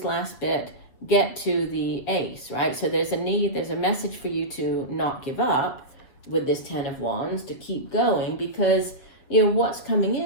last bit, get to the ace, right? So there's a message for you to not give up with this 10 of Wands, to keep going, because, what's coming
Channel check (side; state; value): right; late; 7.6 ms